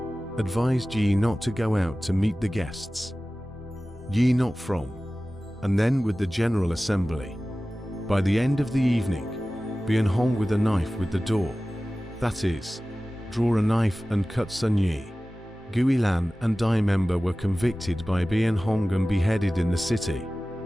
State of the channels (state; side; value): normal; both; correlation 0.97